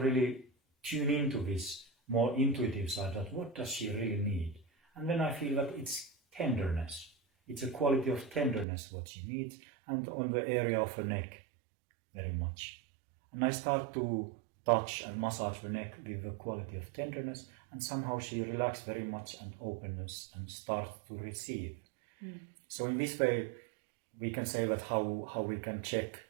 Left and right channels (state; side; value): drops out; left; at 8.7 s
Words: tune into this more intuitive side, that what does she really need? And then I feel that it's tenderness. It's a quality of tenderness what she needs, and on the area of her neck, very much. And I start to touch and massage the neck with the quality of tenderness, and somehow she relaxes very much and openness and starts to receive. So in this way, we can say that how we can check